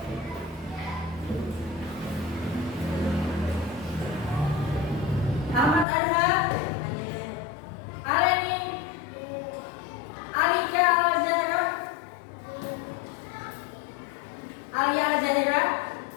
Ahmad Arza, Aleni, Alika Al-Zahra, Alia Al-Zahira,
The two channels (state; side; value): drops out; right; at 5.9 s